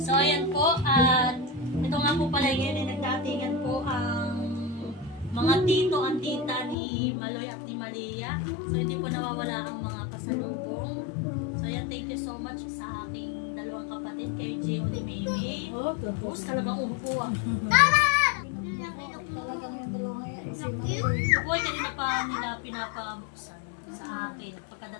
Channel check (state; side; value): drops out; right; at 6.8 s